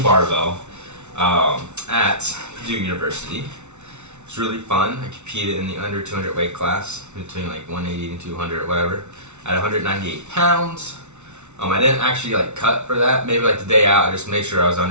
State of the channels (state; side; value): late; left; 0.82 ms